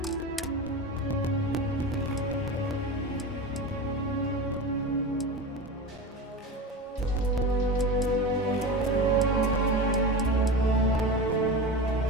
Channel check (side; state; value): both; normal; correlation 0.27